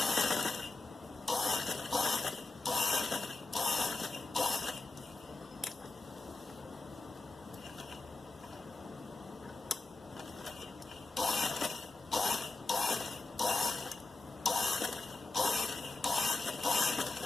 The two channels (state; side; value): quieter; right; 3.2 dB